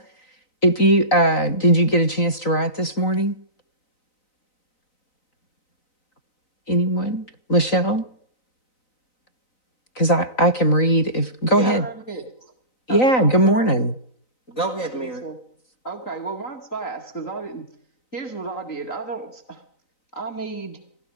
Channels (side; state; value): right; late; 3.9 ms